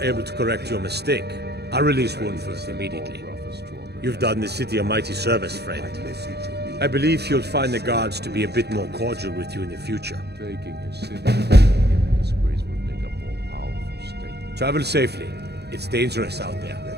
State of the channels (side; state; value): left; late; 0.48 ms